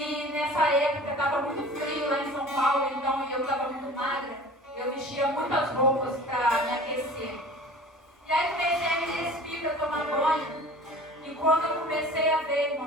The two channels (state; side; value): normal; both; correlation 0.43